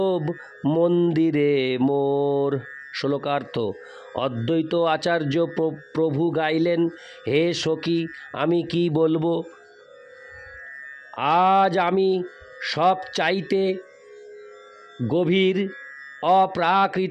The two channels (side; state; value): both; identical; correlation 1.00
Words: মন্দিরে মোর। শ্লোকার্থ: অদ্বৈত আচার্য প্রভু গাইলেন, হে সখী, আমি কি বলবো, আজ আমি সব চাইতে গভীর